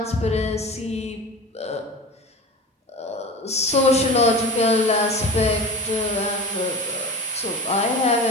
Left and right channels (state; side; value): normal; both; correlation 0.35